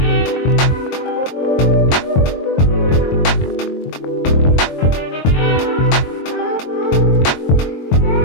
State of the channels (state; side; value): late; right; 22 ms